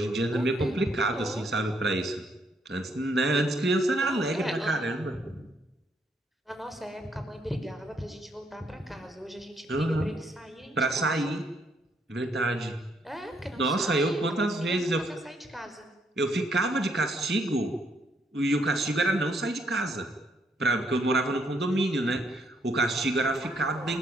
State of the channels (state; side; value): normal; both; correlation 0.72